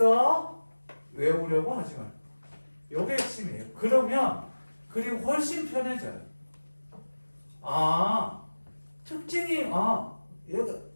외우려고 하지 마. 요게 핵심이에요. 그러면 글이 훨씬 편해져요. 아, 특징이 얘가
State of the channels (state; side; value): inverted; both; correlation -1.00